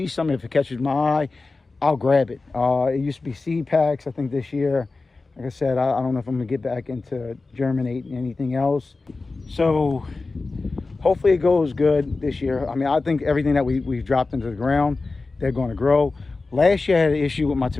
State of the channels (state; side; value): quieter; right; 3.7 dB